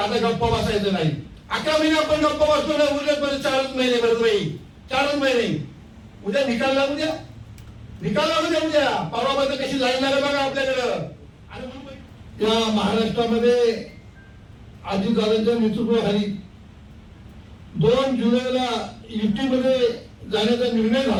आता गप्पा बसायचं नाही. 11 महिने आपण गप्पा बसतो ना, उरले 4 महिने बरोबर, 4 महिने. उद्या निकाल लागू द्या, उद्या परवामध्ये कशी लाईन लागेल बघा आपल्याकडं. आणि या महाराष्ट्रामध्ये अजितदादांच्या नेतृत्वाखाली 2 जुलैला युतीमध्ये जाण्याचा निर्णय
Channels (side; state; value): both; identical; correlation 1.00